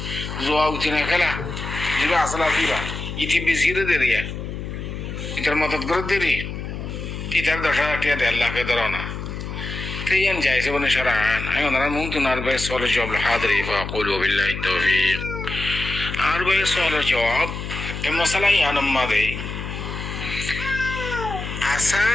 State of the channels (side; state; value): left; noise; hum, 7 dB below the sound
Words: জোয়া উঠে না খেলা যেটা আসলে আসিবা ইতি বেশিরে দে দিয়া ইটার মদত করে দেরি ইটার 10,000 টাকা 1.5 লাখে ধরো না تيان جايز ابن شرعان ايضا ممكن 40 سؤال الجواب الحاضر فاقول وبالله التوفيق 40 سؤال الجواب المسألة يعني ماذا